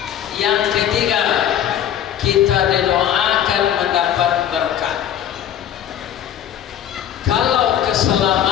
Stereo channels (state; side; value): quieter; right; 10.3 dB